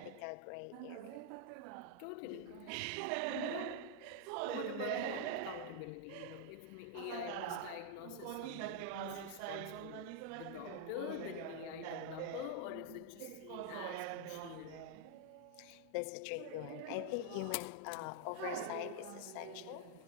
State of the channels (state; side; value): different; both; correlation 0.00